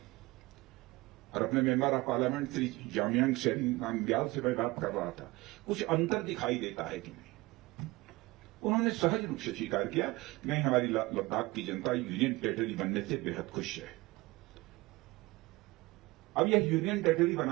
और अपने member of parliament Shri Jamyang Namgyal से मैं बात कर रहा था, कुछ अंतर दिखाई देता है कि नहीं। उन्होंने सहज रूप से स्वीकार किया कि नहीं, हमारी लद्दाख की जनता यूनियन टेरिटरी बनने से बेहद खुश है। अब यह यूनियन टेरिटरी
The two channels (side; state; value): left; quieter; 21.6 dB